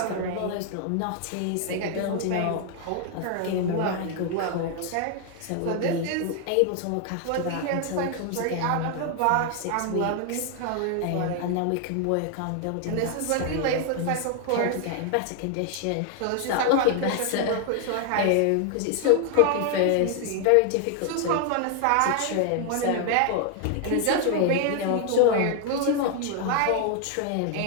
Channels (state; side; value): different; both; correlation 0.00